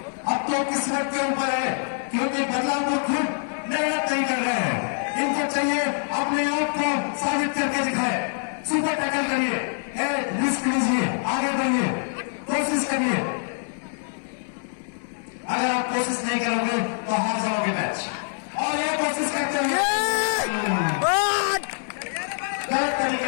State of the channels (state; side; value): silent; right; 62 dB below the other